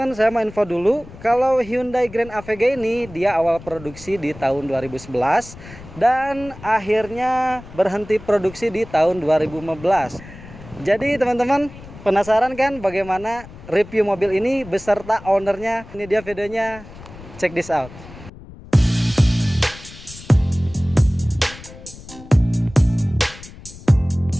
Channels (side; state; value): left; noise; rumble, 17 dB below the sound